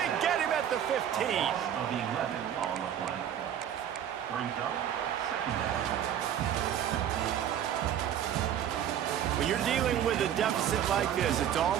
get him at the 15. Of the 11 on the play. Brings up second down. When you're dealing with a deficit like this, it's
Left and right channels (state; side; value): quieter; left; 9.9 dB